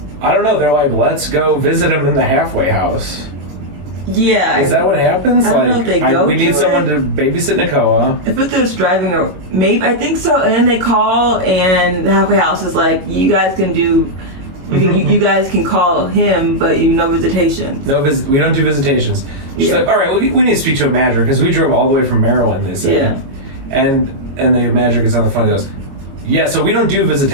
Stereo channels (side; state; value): left; late; 22 ms